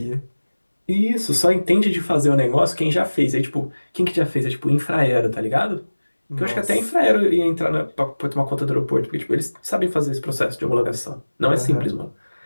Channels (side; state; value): both; inverted; correlation -1.00